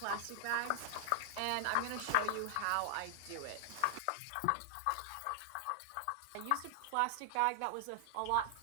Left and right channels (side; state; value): both; different; correlation 0.00